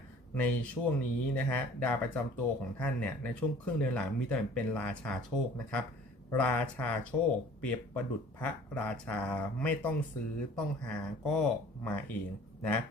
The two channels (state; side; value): normal; both; correlation 0.50